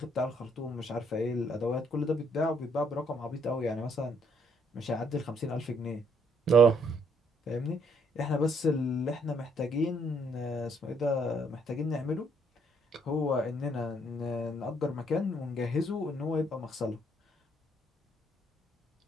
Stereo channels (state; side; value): normal; both; correlation 0.68